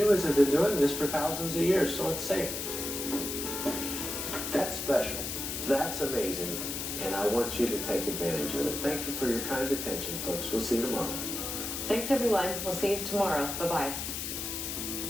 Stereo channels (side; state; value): left; noise; hiss, 4 dB below the sound